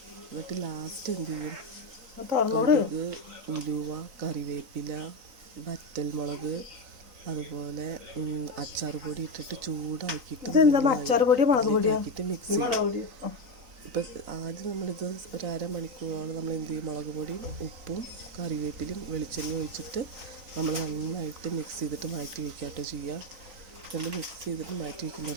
എന്നിട്ട് ലാസ്റ്റ് എന്ത് ചെയ്യും, കടുക്, ഉലുവ, കറിവേപ്പില, വറ്റൽമുളക്, അതുപോലെ അച്ചാർ പൊടി ഇട്ടിട്ട് ചൂടാക്കിയിട്ട് മിക്സ് ചെയ്യും. ഇപ്പം ആദ്യം നമ്മളിത് ഒരു 1/2 മണിക്കൂറോളം നമ്മൾ എന്ത് ചെയ്യും, മുളക് പൊടിയും ഉപ്പും കറിവേപ്പിലും വെളിച്ചെണ്ണയും ഒഴിച്ചിട്ട് നമ്മൾ നന്നായിട്ട് മിക്സ് ചെയ്തിട്ട് മാറ്റി വയ്ക്കാട്ടോ ചെയ്യുക. നമ്മൾ മിക്സ് ചെയ്തിട്ട് മാറ്റി വയ്ക്കുമ്പോൾ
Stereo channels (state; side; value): late; left; 3.9 ms